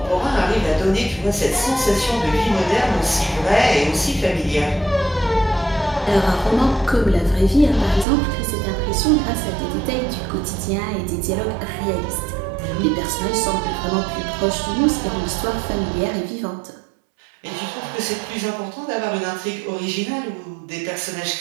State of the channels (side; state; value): left; drops out; at 8.1 s